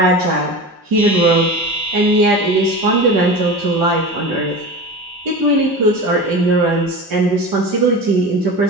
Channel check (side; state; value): both; normal; correlation 0.30